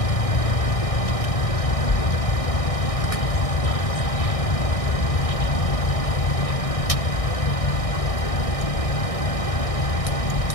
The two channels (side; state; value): right; late; 1.6 ms